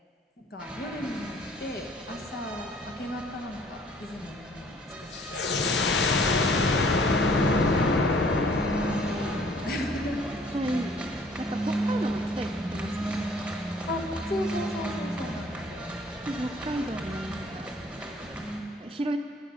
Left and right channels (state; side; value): normal; both; correlation 0.57